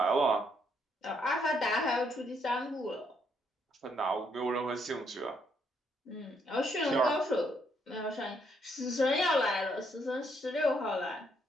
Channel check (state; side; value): normal; both; correlation 0.72